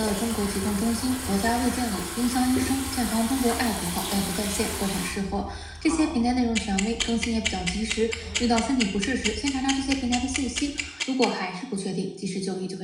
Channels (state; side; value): identical; both; correlation 1.00